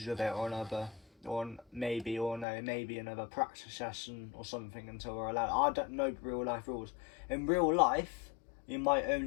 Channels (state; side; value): drops out; right; at 2.5 s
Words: with it, or another, or maybe another practice session or something until we're allowed. I don't know real life rules. In real life, you might